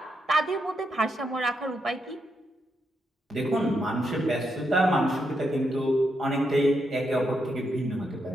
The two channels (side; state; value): both; normal; correlation 0.81